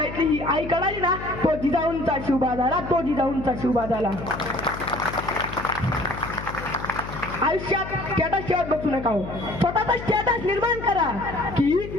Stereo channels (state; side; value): noise; left; hum, 10 dB below the sound